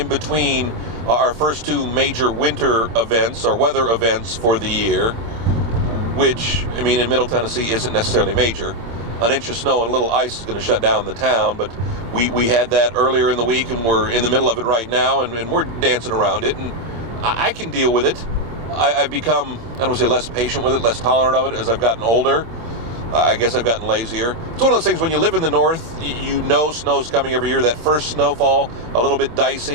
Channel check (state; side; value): late; left; 26 ms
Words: between our first two major winter events, or weather events for the year, which, I mean, in Middle Tennessee isn't necessarily major. An inch of snow and a little ice is going to shut down the town, but we had that earlier in the week, and we're in the middle of it right now, and we're dancing around it, and I can deal with it. I've become, I don't want to say less patient with it, less tolerant of it as I've gotten older. I guess I've gotten lazier. It's one of those things when you live in the north, you know snow's coming every year. That first snowfall, a little bit